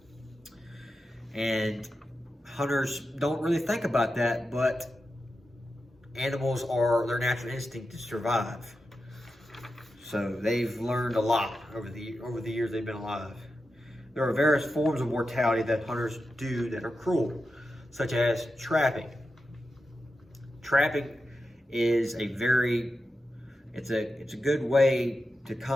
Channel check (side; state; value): both; normal; correlation 0.90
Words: And hunters don't really think about that, but animals are their natural instinct to survive. So they've learned a lot over the years they've been alive. There are various forms of mortality that hunters do that are cruel, such as trapping. Trapping is a good way to